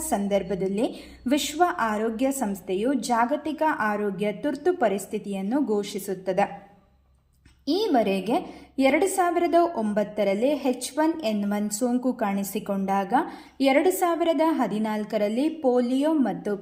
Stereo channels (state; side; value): identical; both; correlation 1.00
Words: ಸಂದರ್ಭದಲ್ಲಿ ವಿಶ್ವ ಆರೋಗ್ಯ ಸಂಸ್ಥೆಯು ಜಾಗತಿಕ ಆರೋಗ್ಯ ತುರ್ತು ಪರಿಸ್ಥಿತಿಯನ್ನು ಘೋಷಿಸುತ್ತದೆ. ಈವರೆಗೆ 2009ರಲ್ಲಿ H1N1 ಸೋಂಕು ಕಾಣಿಸಿಕೊಂಡಾಗ 2014ರಲ್ಲಿ ಪೋಲಿಯೋ ಮತ್ತು